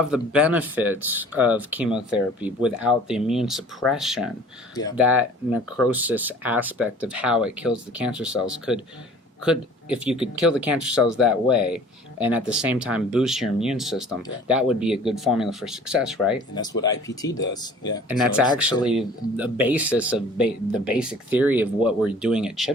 the benefits of chemotherapy without the immune suppression, that necrosis aspect of how it kills the cancer cells could, if you could kill the cancer cells that way, and at the same time boost your immune system, that would be a good formula for success, right? And that's what IPT does. And that's actually the basis of the basic theory of what we're doing at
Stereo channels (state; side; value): normal; both; correlation 0.48